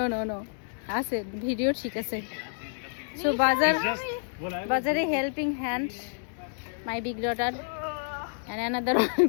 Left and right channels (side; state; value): right; silent; 59 dB below the other